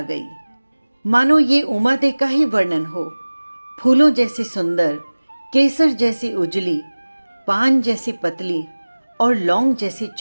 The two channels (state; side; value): inverted; both; correlation -1.00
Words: गई। मानो ये उमादे का ही वर्णन हो। फूलों जैसी सुंदर, केसर जैसी उजली, पान जैसी पतली और लौंग जैसी